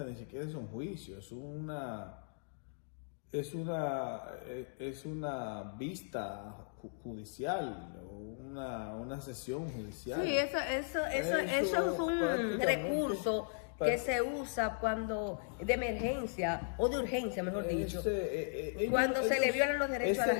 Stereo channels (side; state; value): right; silent; digital silence